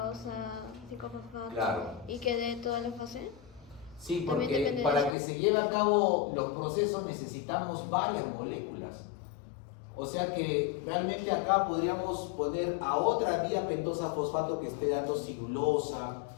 5-fosfato, Claro. y que dé toda la fase. Sí, También porque depende de para eso. que se lleve a cabo los procesos necesitamos varias moléculas. O sea que realmente acá podríamos poner a otra vía pentosa fosfato que esté dando celulosa,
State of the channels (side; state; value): right; drops out; at 5.2 s